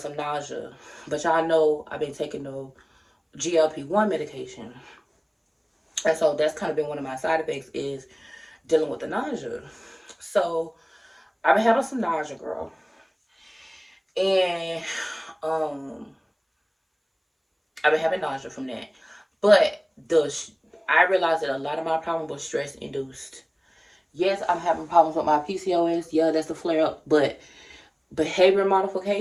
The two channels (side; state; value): both; identical; correlation 1.00